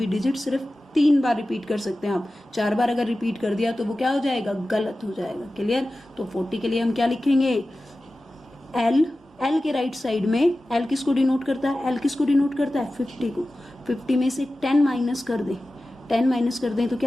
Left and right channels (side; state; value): both; normal; correlation 0.95